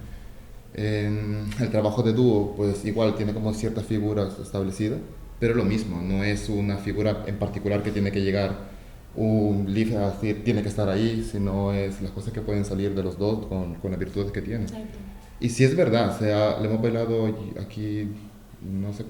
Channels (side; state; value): both; identical; correlation 1.00